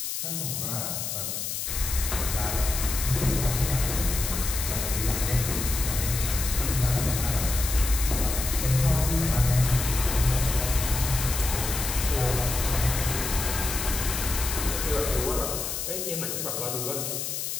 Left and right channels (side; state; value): left; noise; hiss, 3 dB below the sound